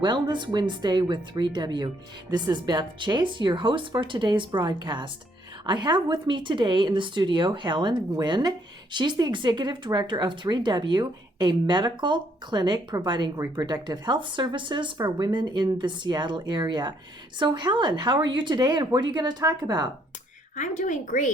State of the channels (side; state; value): both; normal; correlation 0.69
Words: Wednesday with 3W. This is Beth Chase, your host for today's broadcast. I have with me today in the studio Helen Nguyen. She's the executive director of 3W, a medical clinic providing reproductive health services for women in the Seattle area. So Helen, how are you today and what are you going to talk about? I'm doing